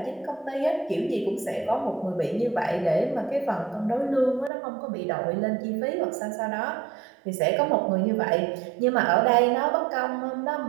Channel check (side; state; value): left; drops out; at 4.5 s